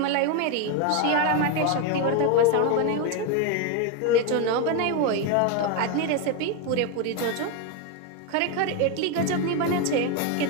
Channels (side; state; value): both; different; correlation 0.02